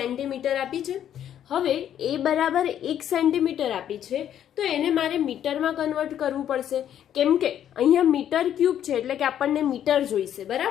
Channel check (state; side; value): quieter; right; 10.3 dB